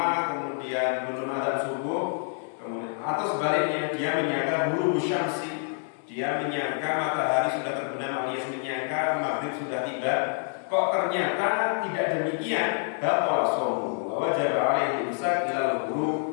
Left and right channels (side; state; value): right; silent; 60 dB below the other